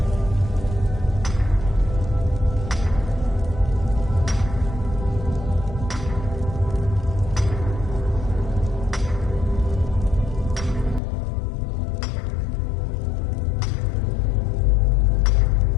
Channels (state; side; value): drops out; right; at 11.0 s